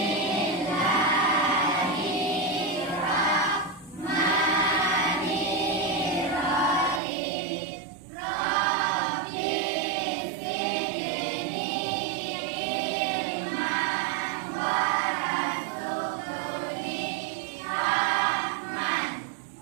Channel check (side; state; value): left; drops out; at 7.0 s